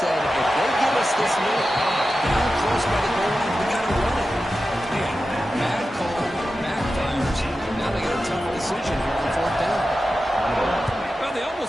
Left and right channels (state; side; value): normal; both; correlation 0.92